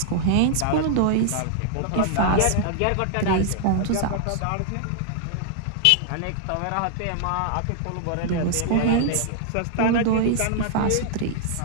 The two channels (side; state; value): both; different; correlation -0.01